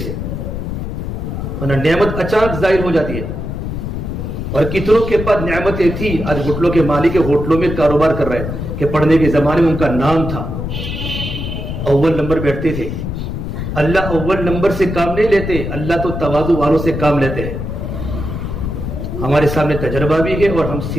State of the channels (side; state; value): left; noise; rumble, 5 dB below the sound